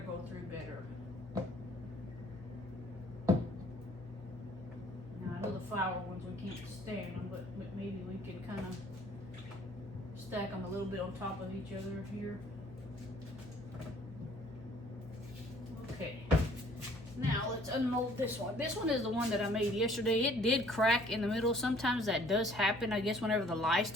go through better. The flower ones we can't stand them, but maybe we can kind of stack them a little bit on top of each other here. Okay, now let's unmold this one. This one is the one that I made yesterday. It did crack in the middle. Sometimes that does happen, I guess, whenever the lye's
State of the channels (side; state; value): both; normal; correlation 0.57